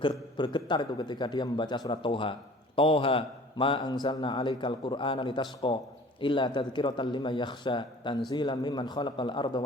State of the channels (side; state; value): both; normal; correlation 0.47